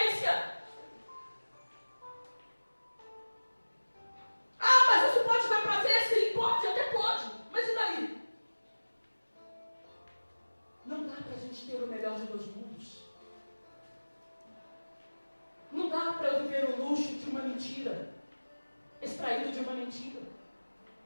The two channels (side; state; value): both; inverted; correlation -1.00